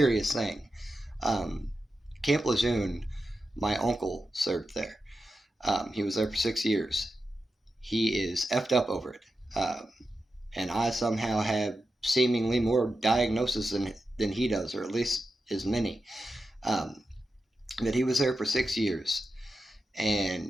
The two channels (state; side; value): normal; both; correlation 0.90